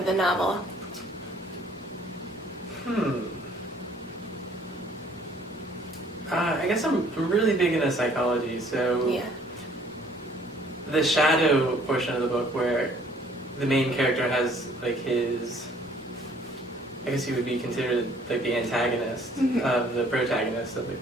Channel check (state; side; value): normal; both; correlation 0.58